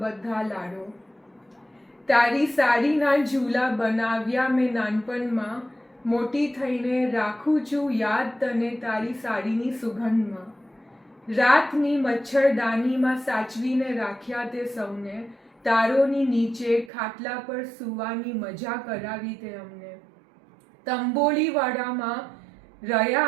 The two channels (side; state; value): left; drops out; at 16.9 s